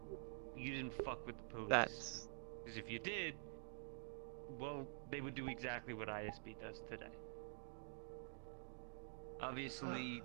you didn't fuck with the police. That's Because if you did, well, they would do exactly what ISB does today. Obviously,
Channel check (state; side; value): silent; left; digital silence